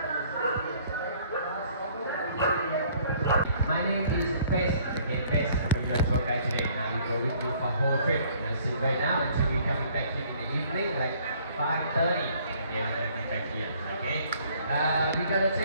My name is Bess. Okay, Bess. I'm your tour guide today. Now we go with you for whole trip. So right now until we coming back here in the evening, like 5:30. Okay, we're gonna come back here. Okay. We gotta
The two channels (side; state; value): both; inverted; correlation -0.59